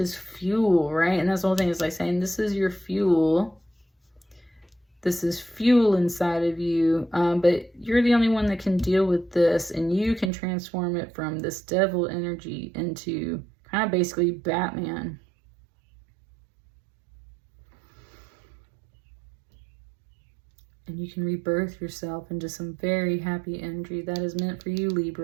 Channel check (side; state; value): left; drops out; at 10.3 s